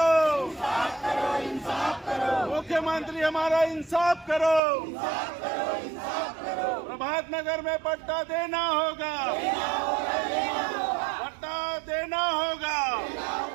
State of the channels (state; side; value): drops out; left; at 4.6 s